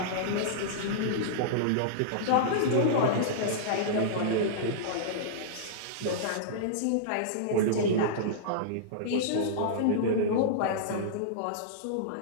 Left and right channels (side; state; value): both; different; correlation -0.03